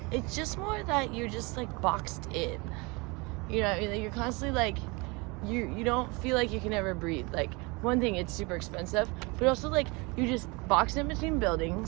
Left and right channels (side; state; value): left; quieter; 27.3 dB